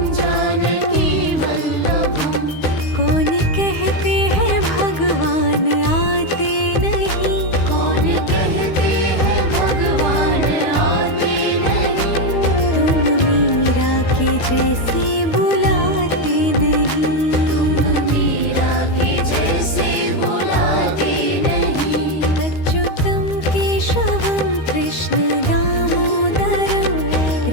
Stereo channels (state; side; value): late; right; 13 ms